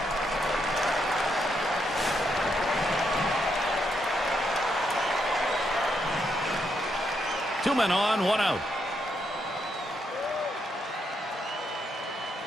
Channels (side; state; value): both; normal; correlation 0.79